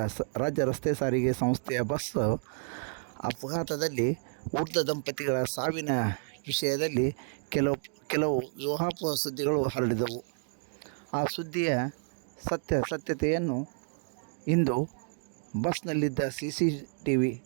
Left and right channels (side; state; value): left; silent; 57 dB below the other